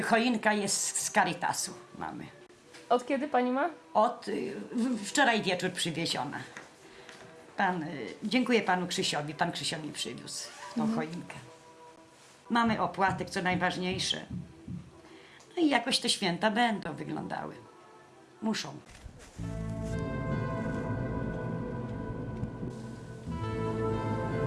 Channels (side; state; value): both; identical; correlation 1.00